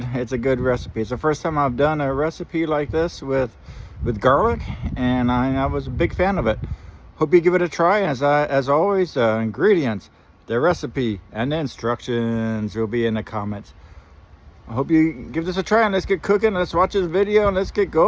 recipe. It's the first time I've done a recipe like this with garlic, and I was a big fan of it. Hope you give it a try. As always, ingredients, the recipe, and the instructions will be in the comments. I hope you give this a try, and let's get cooking. Let's watch this video and let's get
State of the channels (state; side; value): identical; both; correlation 1.00